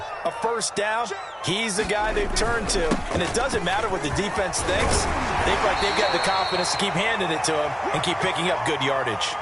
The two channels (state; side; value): identical; both; correlation 1.00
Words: a first down, he's the guy they've turned to. And it doesn't matter what the defense thinks. They feel like they've got the confidence to keep handing it to him and keep picking up good yardage.